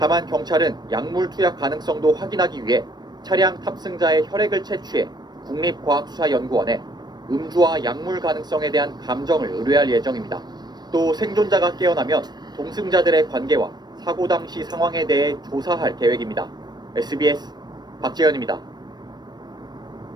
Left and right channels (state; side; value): late; left; 0.20 ms